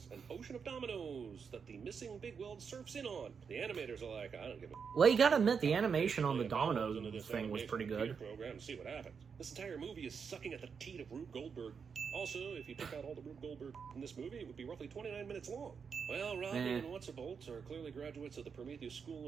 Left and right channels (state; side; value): quieter; left; 6.2 dB